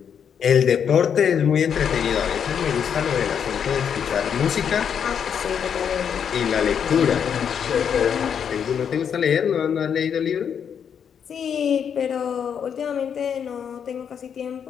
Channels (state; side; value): quieter; right; 7.8 dB